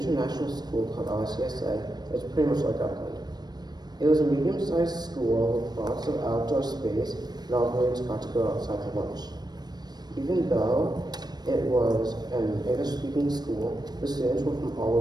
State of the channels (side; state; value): left; late; 0.20 ms